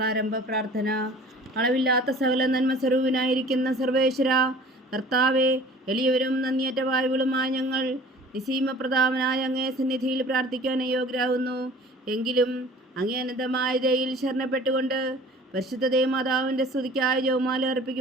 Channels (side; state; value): both; normal; correlation 0.46